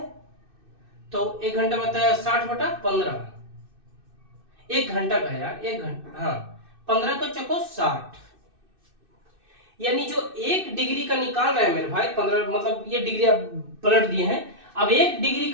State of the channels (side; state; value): left; late; 2.6 ms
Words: तो एक घंटा बताया 60 बटा 15, एक घंटा का यार, एक घंटा, हाँ 15 को चको 60, यानी जो 1 डिग्री का निकाल रहे हैं मेरे भाई 15, मतलब ये डिग्री आप पलट दिए हैं। अब 1 डिग्री